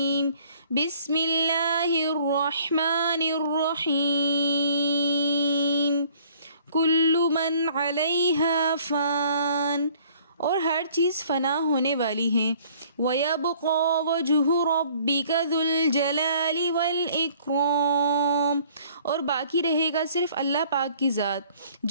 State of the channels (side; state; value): both; inverted; correlation -0.57